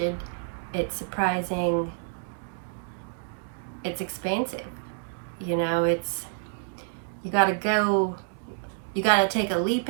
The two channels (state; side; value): silent; left; digital silence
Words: it's surprising, it's expansive. You know, you gotta take a leap